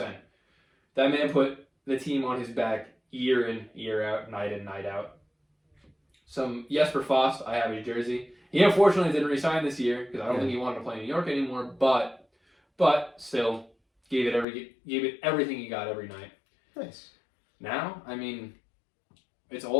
That man put the team on his back year in, year out, night in, night out. Some Jesper Fast, I have his jersey. He unfortunately didn't resign this year because I don't think he wanted to play in New York anymore. But still, gave it everything he got every night. Nice. Now, I mean, it's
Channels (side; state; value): right; drops out; at 14.5 s